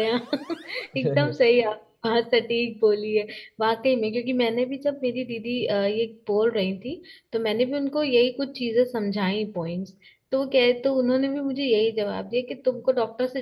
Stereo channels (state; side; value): identical; both; correlation 1.00